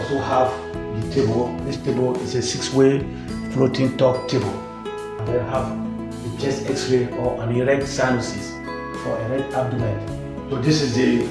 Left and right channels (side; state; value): both; identical; correlation 1.00